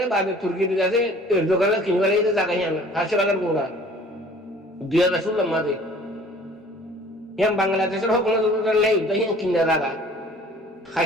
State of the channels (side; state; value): both; normal; correlation 0.50